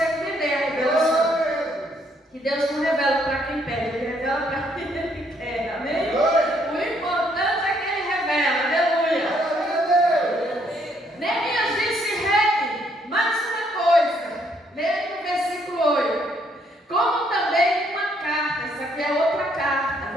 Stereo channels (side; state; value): both; normal; correlation 0.69